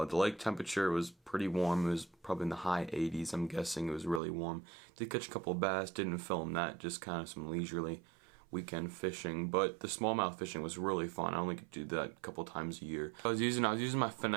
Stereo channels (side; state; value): left; drops out; at 4.2 s